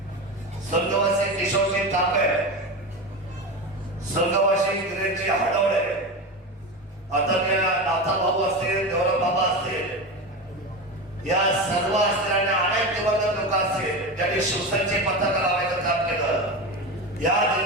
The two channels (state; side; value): normal; both; correlation 0.22